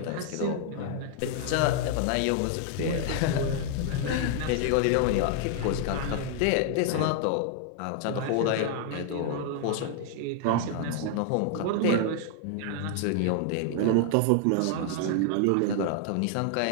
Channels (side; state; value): both; different; correlation 0.00